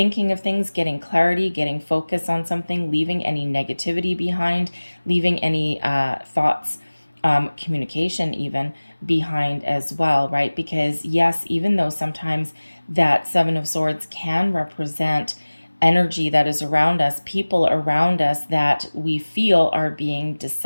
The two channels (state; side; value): inverted; both; correlation -1.00